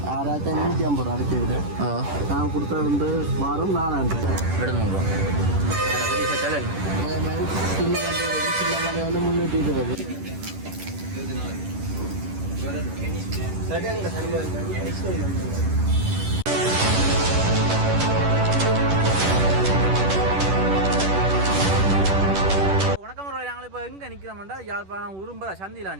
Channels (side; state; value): left; late; 10 ms